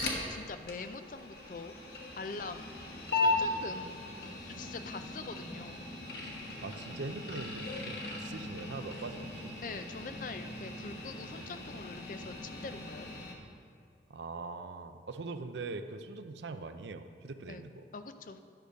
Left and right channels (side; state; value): both; normal; correlation -0.06